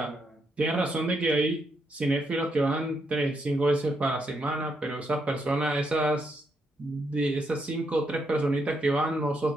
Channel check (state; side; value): normal; both; correlation 0.79